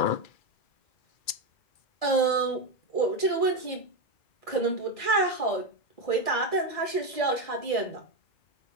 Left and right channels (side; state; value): right; late; 2.3 ms